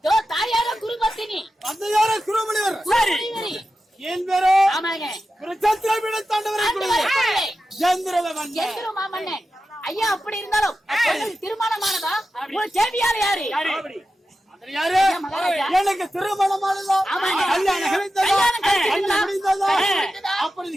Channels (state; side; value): normal; both; correlation 0.92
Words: தாயார குருபத்தினி, தந்தையார குருமணிவர். சரி. என் பேரோ ஆமாங்க. குருச்சத்திரபீட தாண்டவரை குருவே எந்திர மாமன்னன். ஐயா அப்படி இருந்தாலும் உங்களுக்கு திருமணமானதா? உங்க சேவியார் யாரு? யாரு? எனக்கு திருமணமானதா? ஆமாங்க. கல்யாணம் கழித்ததா? கல்யாணம் கழித்ததா? கல்யாணம் முடிந்ததா? முடிந்ததா? அப்படி